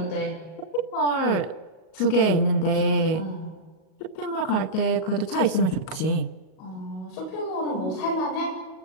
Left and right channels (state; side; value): late; right; 38 ms